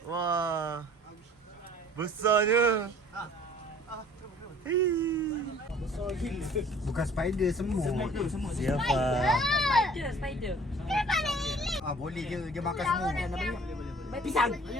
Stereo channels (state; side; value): normal; both; correlation 0.52